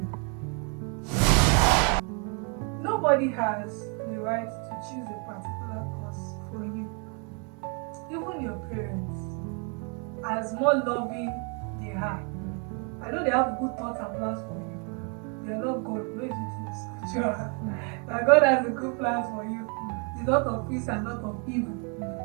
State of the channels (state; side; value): quieter; left; 36.9 dB